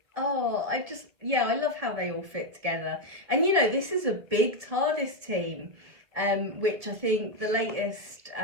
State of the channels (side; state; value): left; late; 2.1 ms